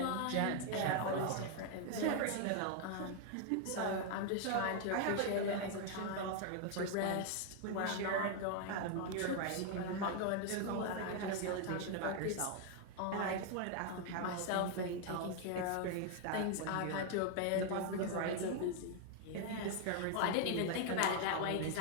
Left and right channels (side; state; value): both; different; correlation 0.00